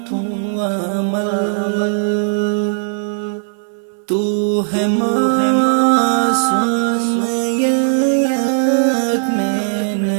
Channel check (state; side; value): silent; left; 65 dB below the other